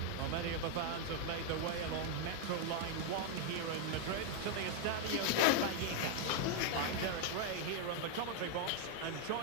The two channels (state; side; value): different; both; correlation 0.01